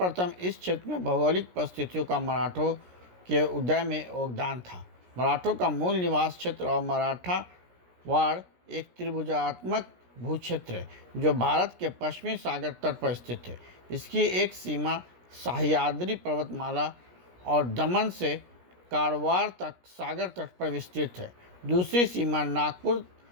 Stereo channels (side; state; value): left; late; 17 ms